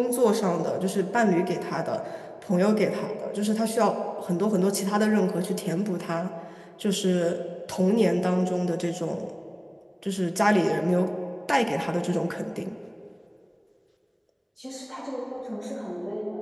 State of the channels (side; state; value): both; identical; correlation 1.00